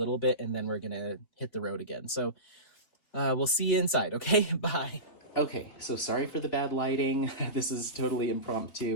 bit, and then we're going to hit the road again. So we'll see you inside, okay? Bye. Okay, so sorry for the bad lighting. This is totally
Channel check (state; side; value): late; right; 3.5 ms